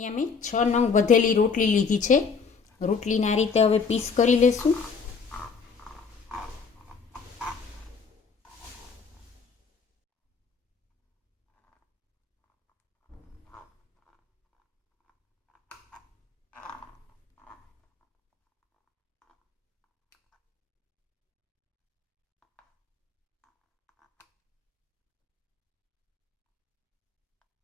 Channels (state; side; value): quieter; right; 5.4 dB